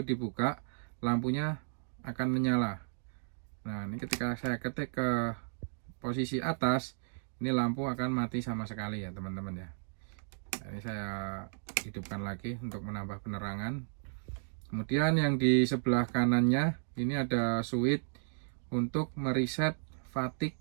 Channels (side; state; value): left; silent; digital silence